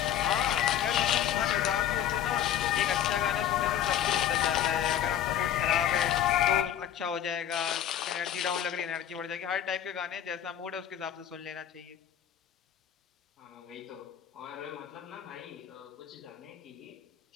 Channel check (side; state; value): right; quieter; 10.3 dB